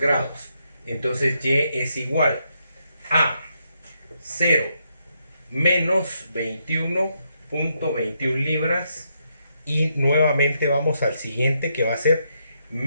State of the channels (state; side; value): inverted; both; correlation -0.79